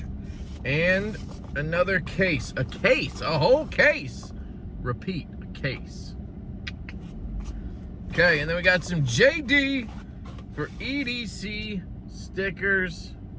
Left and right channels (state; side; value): identical; both; correlation 1.00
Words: And another case. A case, a whole case. Repeat, a case. Okay, and then we got some JD for EDC stickers.